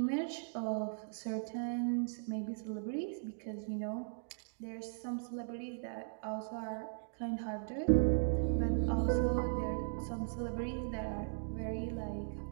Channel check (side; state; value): left; silent; digital silence